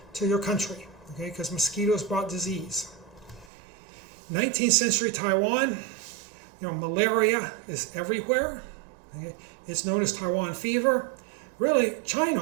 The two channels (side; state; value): left; drops out; at 3.5 s